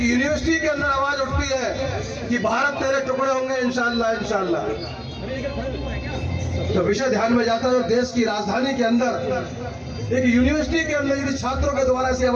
यूनिवर्सिटी के अंदर आवाज उठती है कि भारत तेरे टुकड़े होंगे इंशाअल्लाह इंशाअल्लाह, तो विषय ध्यान में जाता है। देश की राजधानी के अंदर एक यूनिवर्सिटी के अंदर यदि छात्रों के द्वारा ऐसी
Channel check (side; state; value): both; identical; correlation 1.00